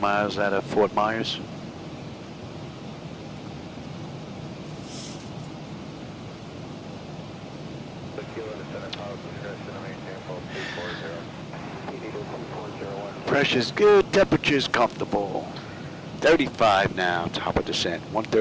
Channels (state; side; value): identical; both; correlation 1.00